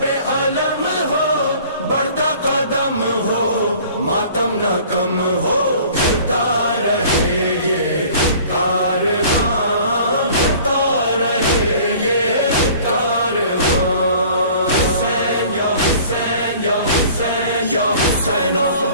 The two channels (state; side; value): inverted; both; correlation -0.49